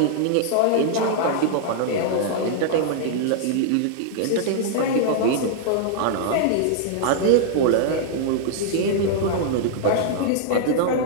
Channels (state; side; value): different; both; correlation -0.01